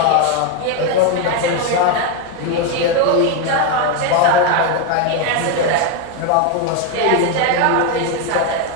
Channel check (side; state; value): both; different; correlation 0.02